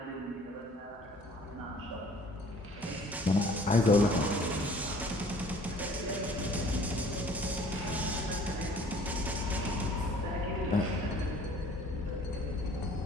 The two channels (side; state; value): both; normal; correlation 0.53